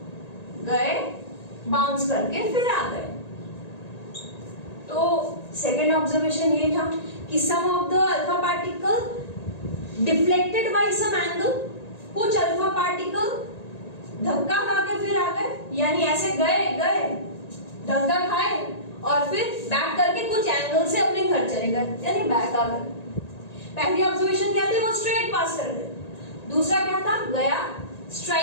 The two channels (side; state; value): right; late; 1.8 ms